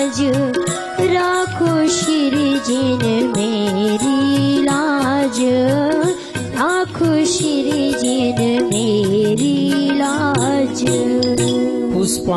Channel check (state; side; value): identical; both; correlation 1.00